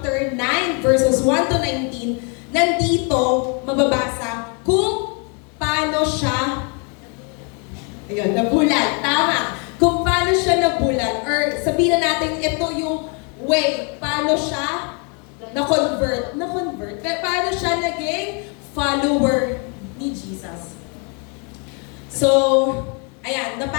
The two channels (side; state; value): right; quieter; 36.3 dB